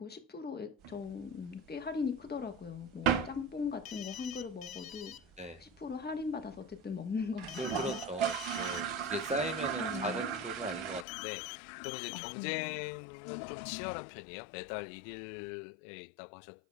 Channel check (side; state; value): right; drops out; at 11.1 s